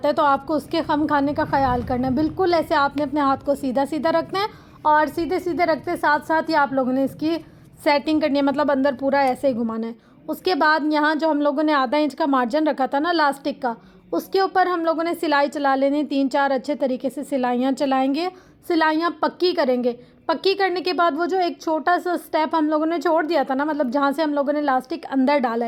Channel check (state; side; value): identical; both; correlation 1.00